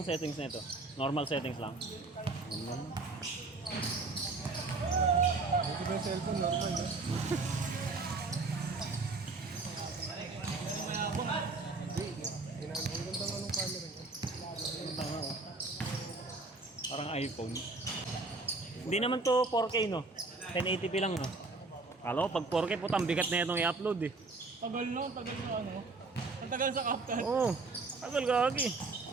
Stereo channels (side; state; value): left; quieter; 3.6 dB